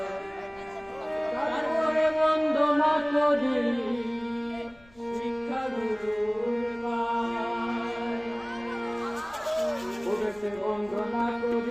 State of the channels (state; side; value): noise; left; rumble, 28 dB below the sound